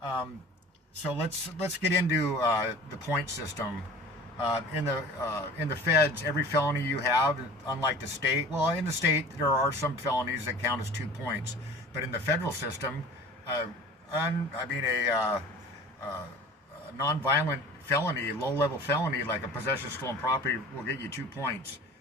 So let's get into the point system. In the feds, every felony you have, unlike the state, well, in the state there are some felonies that count as 2 points, but in the federal system, a non-violent felony, low-level felony like a possession of stolen property will get you 2 points.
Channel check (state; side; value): normal; both; correlation 0.42